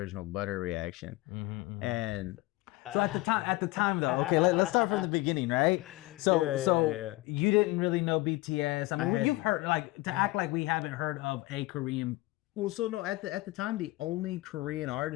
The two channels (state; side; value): quieter; right; 20.6 dB